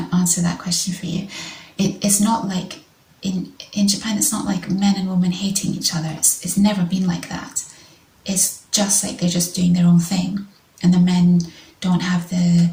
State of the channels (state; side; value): identical; both; correlation 1.00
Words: answer that question for you. It's not like in Japan, it's not like men and women hating each other. It's never been like that. It's just like they're just doing their own thing, and the men don't have the